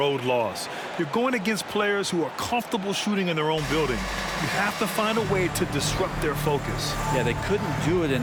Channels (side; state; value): both; identical; correlation 1.00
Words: loss. You're going against players who are comfortable shooting in their own building. You have to find a way to disrupt their focus. Yeah, they couldn't do it